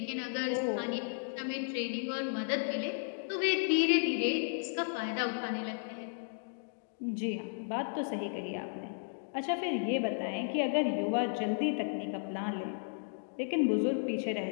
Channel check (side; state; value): right; silent; digital silence